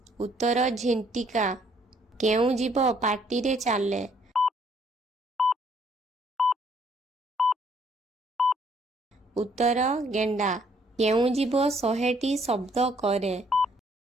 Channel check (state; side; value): normal; both; correlation 0.65